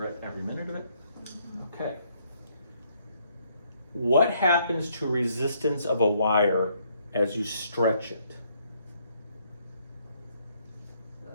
every minute of it? Okay. What happens to resistance of a wire as you stretch it?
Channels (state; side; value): inverted; both; correlation -0.69